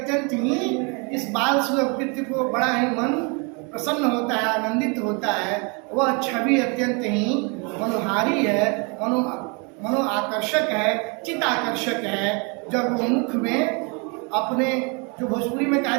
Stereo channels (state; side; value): quieter; left; 32.7 dB